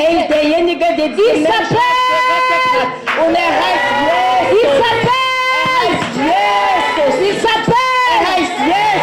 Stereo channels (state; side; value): identical; both; correlation 1.00